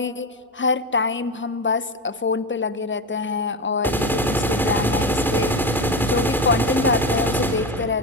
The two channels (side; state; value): both; normal; correlation 0.18